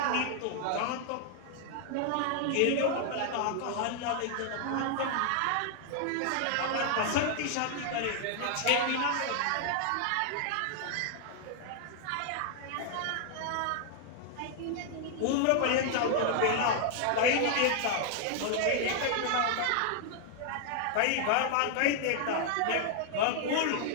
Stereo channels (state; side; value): different; both; correlation 0.00